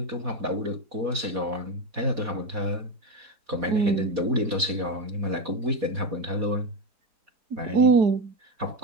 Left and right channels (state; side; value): late; left; 4.2 ms